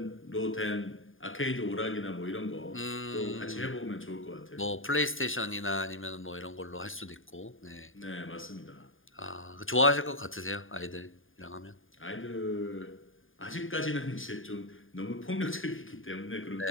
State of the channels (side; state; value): right; late; 0.59 ms